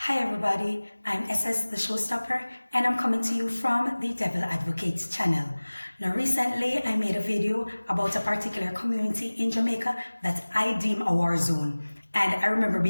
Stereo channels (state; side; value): inverted; both; correlation -1.00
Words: Hi everybody, I'm SS the Showstopper and I'm coming to you from the Devil Advocates channel. Now recently I made a video about a particular community in Jamaica that I deem a war zone, and I remember